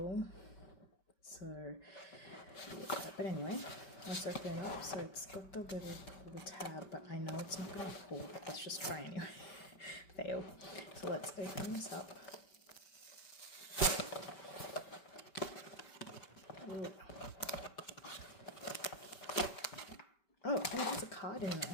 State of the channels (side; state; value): right; late; 5.2 ms